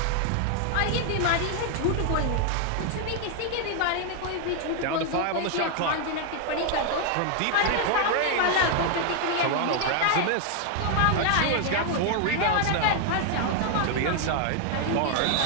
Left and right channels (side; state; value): both; different; correlation 0.00